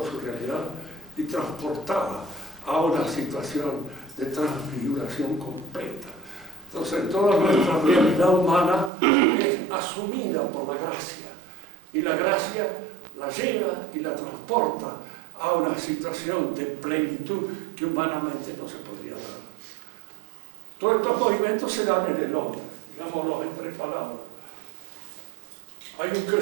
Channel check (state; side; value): drops out; left; at 8.9 s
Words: su realidad y transportada a una situación de transfiguración completa. Entonces, toda nuestra realidad humana es asumida por la gracia, y la gracia la lleva y la transporta a una situación de plenitud que humanamente no se podría dar. Todos estos movimientos se dan en el hombre, digámoslo en 3 palabras. Hay un